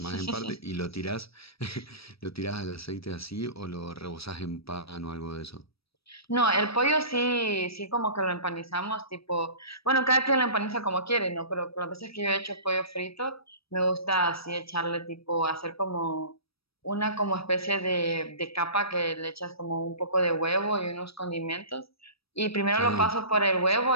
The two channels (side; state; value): right; late; 0.77 ms